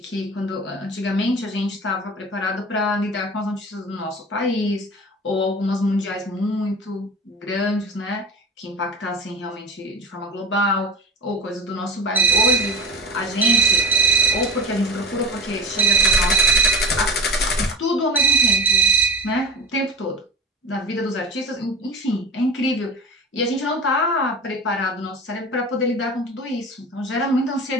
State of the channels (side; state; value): both; normal; correlation 0.30